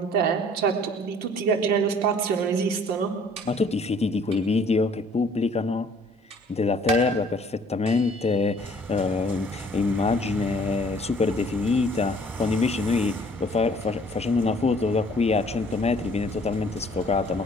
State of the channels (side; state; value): both; normal; correlation 0.57